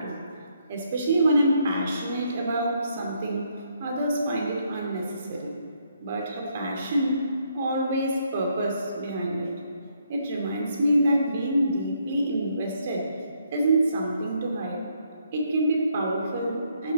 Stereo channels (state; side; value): inverted; both; correlation -0.73